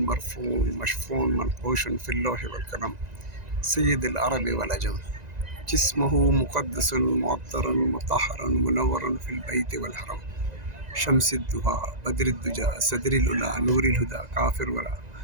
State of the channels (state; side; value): late; left; 1.9 ms